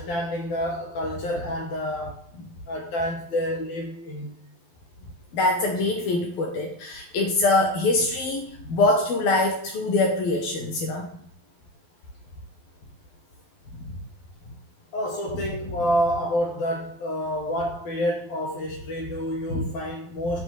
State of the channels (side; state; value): right; late; 12 ms